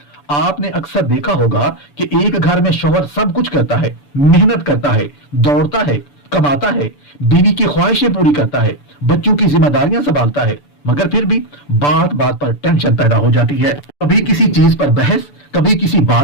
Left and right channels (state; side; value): late; right; 6.9 ms